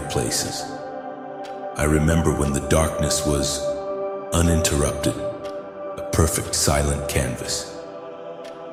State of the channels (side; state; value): both; identical; correlation 1.00